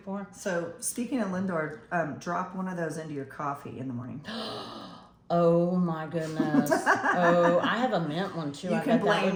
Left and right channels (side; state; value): both; identical; correlation 1.00